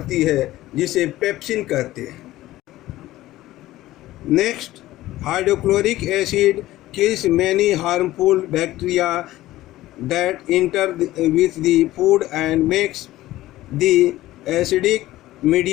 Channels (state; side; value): quieter; right; 16.0 dB